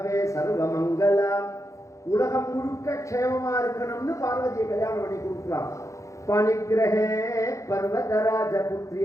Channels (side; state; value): right; late; 0.15 ms